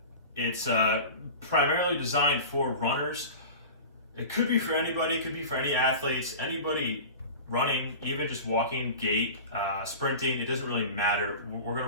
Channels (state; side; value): inverted; both; correlation -0.34